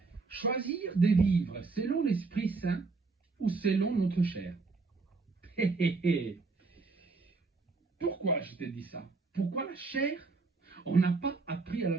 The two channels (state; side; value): quieter; left; 4.0 dB